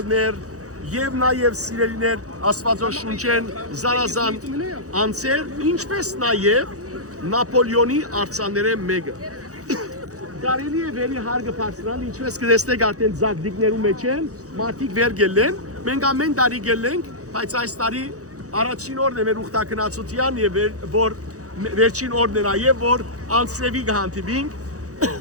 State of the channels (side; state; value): left; late; 0.66 ms